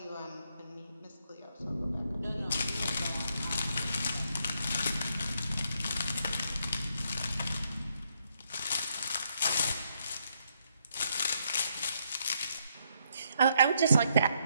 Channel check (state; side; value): inverted; both; correlation -0.75